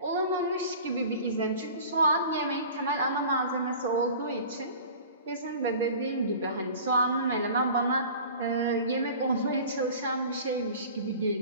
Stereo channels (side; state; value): both; inverted; correlation -0.41